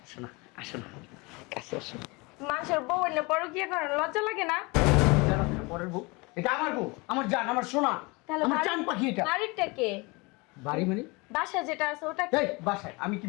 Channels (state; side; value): quieter; right; 26.5 dB